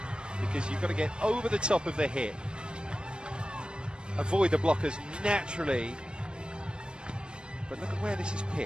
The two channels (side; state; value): left; late; 0.053 ms